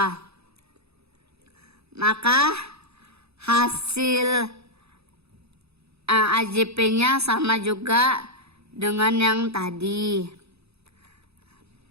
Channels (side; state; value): left; late; 0.79 ms